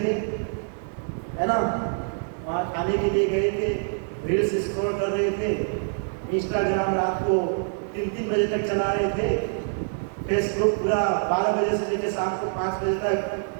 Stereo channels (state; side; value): silent; left; digital silence